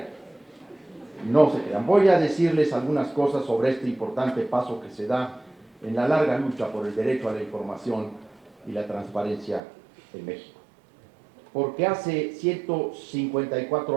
No se crean. Voy a decirles algunas cosas sobre este importante paso que se da en la larga lucha por el derecho a la información y la transparencia en México. Porque hace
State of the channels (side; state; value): left; drops out; at 9.6 s